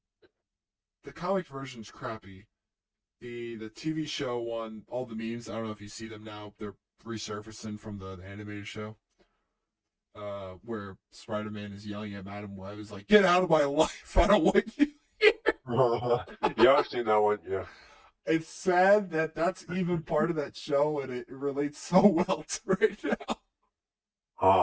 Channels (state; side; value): identical; both; correlation 1.00